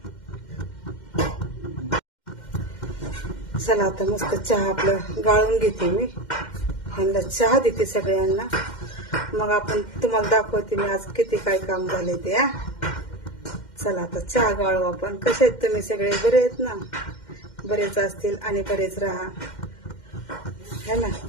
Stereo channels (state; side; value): late; right; 2.1 ms